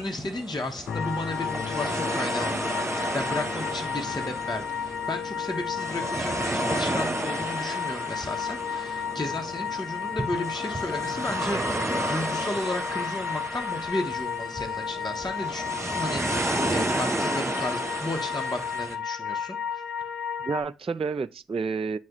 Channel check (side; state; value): both; normal; correlation 0.70